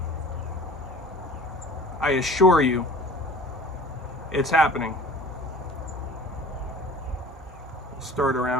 I assure you, it's happening. Start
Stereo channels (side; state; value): both; normal; correlation 0.44